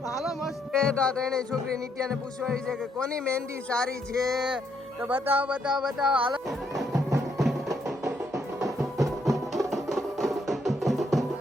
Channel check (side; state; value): both; normal; correlation 0.73